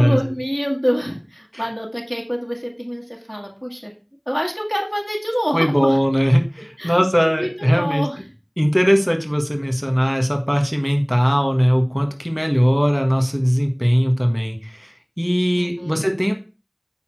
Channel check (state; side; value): identical; both; correlation 1.00